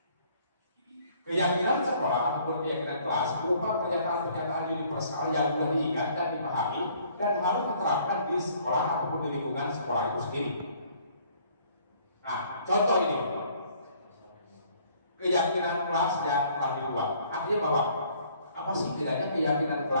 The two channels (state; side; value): inverted; both; correlation -0.60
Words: Keyakinan sekolah ataupun keyakinan kelas berupa pernyataan-pernyataan universal yang mudah diingat dan dipahami dan harus diterapkan di sekolah ataupun di lingkungan sekolah itu sendiri. Nah, contoh ini keyakinan kelas yang telah dibuat. Artinya bahwa apa sih bedanya keyakinan